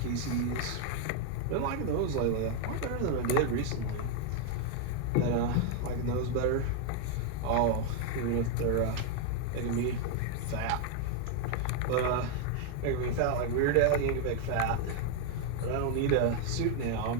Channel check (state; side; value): different; both; correlation 0.01